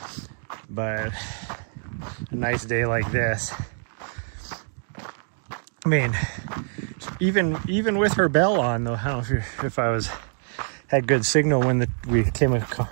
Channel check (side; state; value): left; silent; digital silence